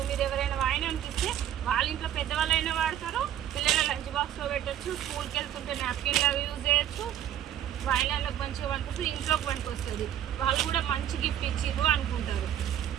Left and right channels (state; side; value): quieter; left; 10.9 dB